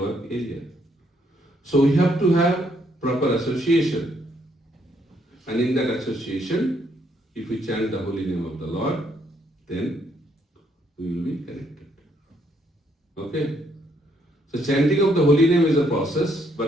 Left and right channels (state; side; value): normal; both; correlation 0.71